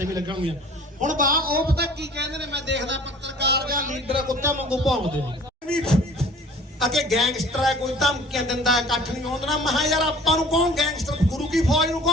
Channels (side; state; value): both; normal; correlation 0.48